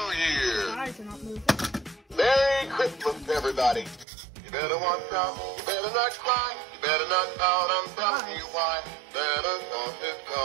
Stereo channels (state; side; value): drops out; left; at 4.0 s